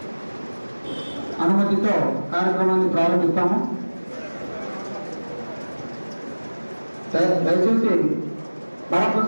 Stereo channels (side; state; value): both; inverted; correlation -1.00